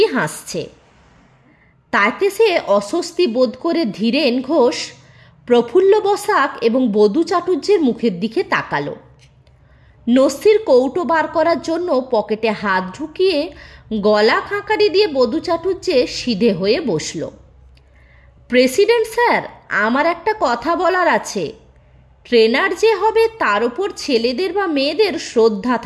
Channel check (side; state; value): both; identical; correlation 1.00